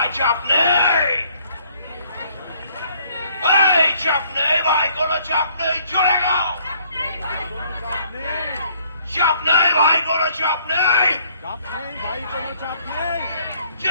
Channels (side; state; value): both; inverted; correlation -0.62